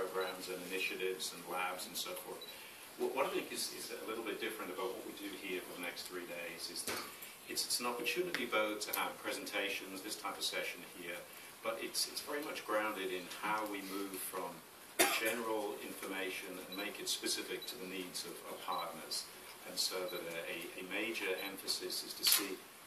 and initiatives and labs and so forth. What I think is a little bit different about what we do here for the next 3 days is that it's an opportunity both to have presentations, this type of session here, but it's very much grounded in how we move from general information and make it specific to the needs of partners. And so that a major emphasis is to see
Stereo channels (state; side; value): identical; both; correlation 1.00